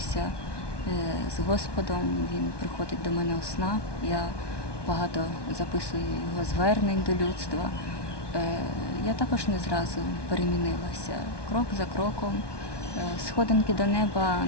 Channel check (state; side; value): late; right; 1.2 ms